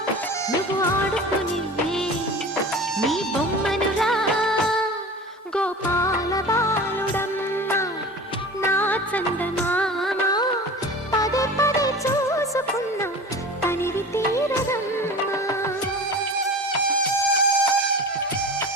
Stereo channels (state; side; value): normal; both; correlation 0.36